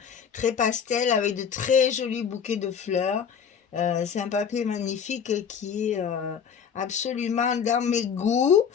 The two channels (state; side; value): quieter; right; 7.3 dB